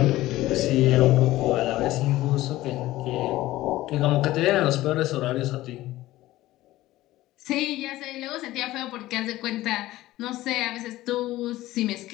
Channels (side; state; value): right; quieter; 16.5 dB